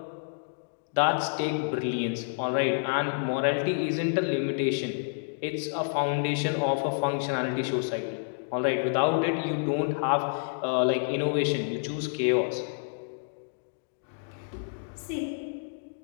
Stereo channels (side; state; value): right; silent; digital silence